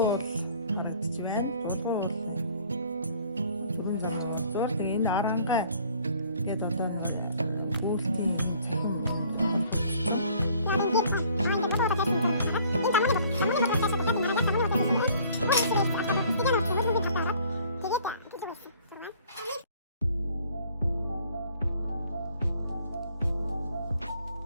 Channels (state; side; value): inverted; both; correlation -0.56